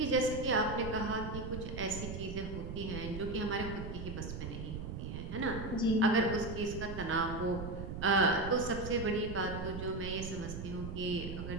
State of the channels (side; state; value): right; noise; rumble, 6 dB below the sound